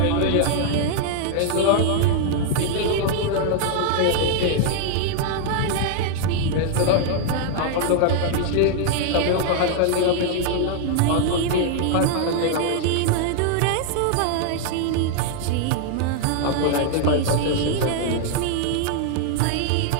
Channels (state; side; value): different; both; correlation 0.00